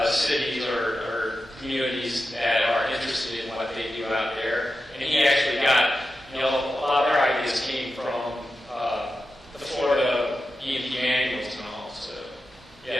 cities or communities that are interested in what they do out there. And he actually got, a lot of their ideas came from the Florida E&P manuals and all. So,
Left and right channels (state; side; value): normal; both; correlation 0.91